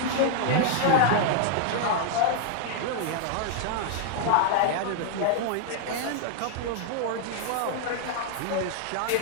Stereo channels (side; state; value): both; different; correlation 0.00